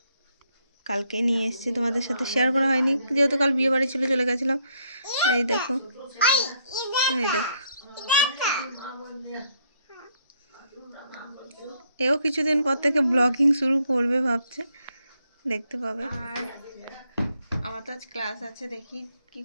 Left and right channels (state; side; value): inverted; both; correlation -0.71